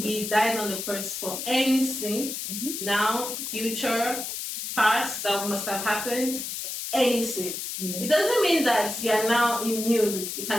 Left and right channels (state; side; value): noise; left; hiss, 5 dB below the sound